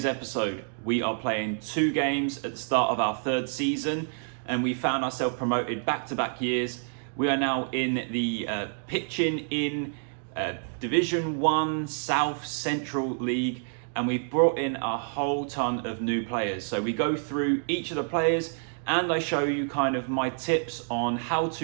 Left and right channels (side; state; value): left; silent; digital silence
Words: episode, we are playing 2 games at the start of our 3rd season and we found ourselves promoted back-to-back years. We are now in the pitching in Division 1 South Central League and we've brought in a whole ton of new players. So we go through each of the players and I show you kind of my tips on how